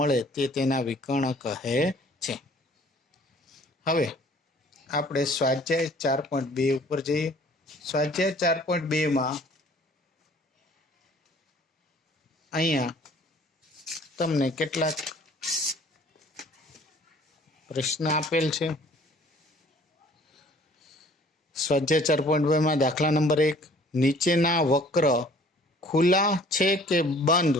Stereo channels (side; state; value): both; normal; correlation 0.54